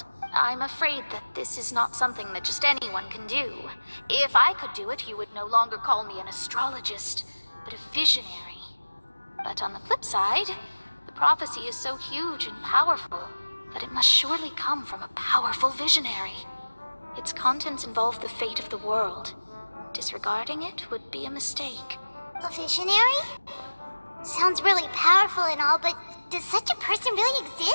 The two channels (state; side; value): inverted; both; correlation -1.00